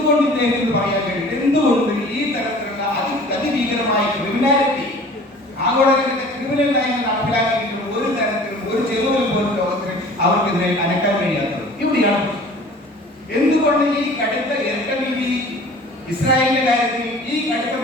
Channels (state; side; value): normal; both; correlation 0.46